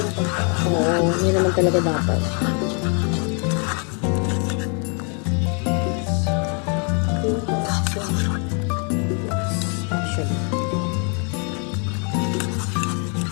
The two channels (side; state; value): right; quieter; 37.2 dB